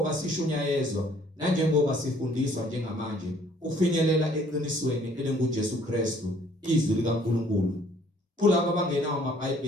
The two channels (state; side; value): normal; both; correlation 0.59